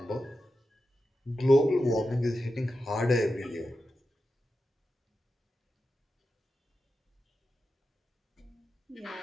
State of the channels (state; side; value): normal; both; correlation 0.90